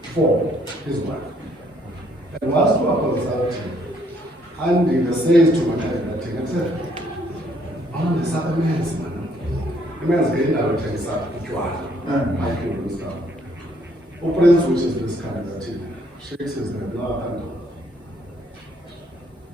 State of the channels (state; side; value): normal; both; correlation 0.67